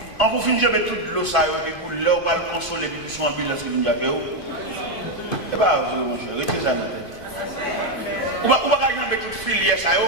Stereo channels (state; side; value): late; right; 2.5 ms